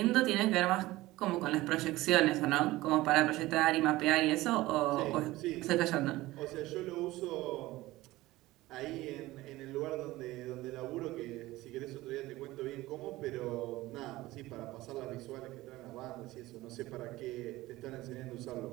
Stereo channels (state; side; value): quieter; left; 18.1 dB